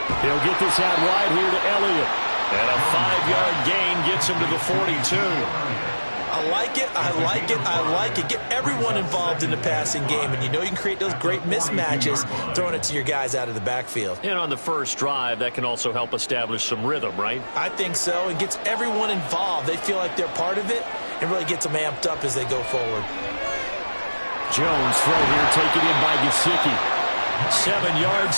He'll get this out wide here to Elliott. And a 5-yard gain gets him to the 42. I like it, I like it, I like it. Get everyone involved in the passing game, and you know you can create those great mismatches throwing it to your guys out of the backfield. And on the first drive, that can also help establish some rhythm, right? I think so. It gets everyone involved. They feel like they're part of it and really gets them amped up as they go forward. Jones throw here, taken in by Gesicki. 7 yards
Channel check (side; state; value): both; inverted; correlation -1.00